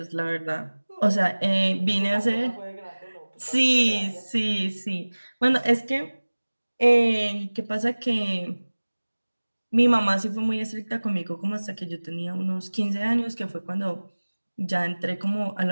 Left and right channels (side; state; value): both; inverted; correlation -1.00